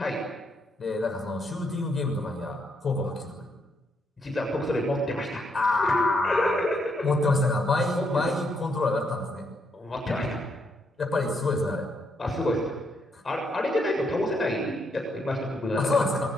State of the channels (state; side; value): normal; both; correlation 0.76